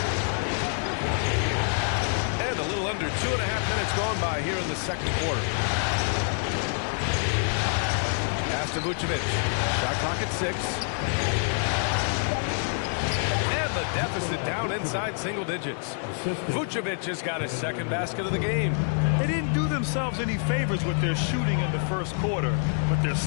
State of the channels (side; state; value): right; silent; 60 dB below the other